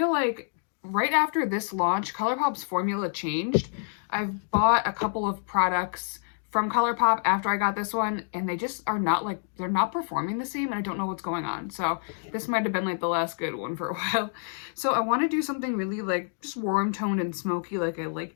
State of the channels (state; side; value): silent; right; 60 dB below the other